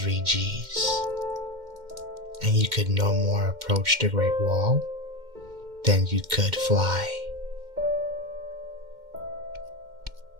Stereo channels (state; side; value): late; left; 2.1 ms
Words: Gs, and you could no more approach the Great Wall than you could fly.